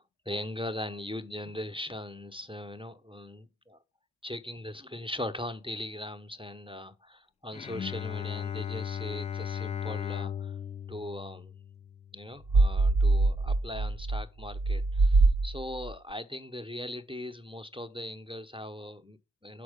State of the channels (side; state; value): both; normal; correlation 0.76